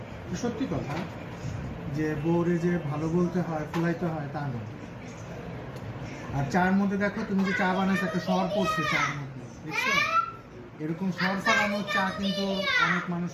সত্যি কথা যে বউরে যে ভালো বলতে হয়, ফুলাইতে হয় তা না। আর চার মধ্যে দেখো, তুমি যে চা বানাচ্ছো একটা সর পড়ছে চার মধ্যে, দেখছো? এরকম সর ফালানোর চা কিন্তু অনেক মানুষ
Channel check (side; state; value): both; identical; correlation 1.00